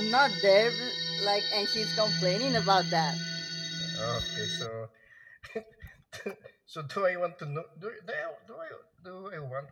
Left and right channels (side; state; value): both; identical; correlation 1.00